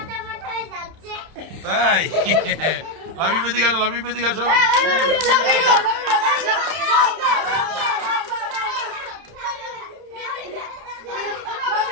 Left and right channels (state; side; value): late; left; 31 ms